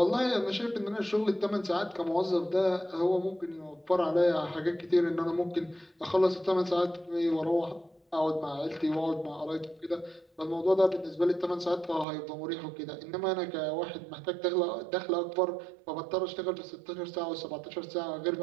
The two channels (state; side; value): drops out; left; at 12.1 s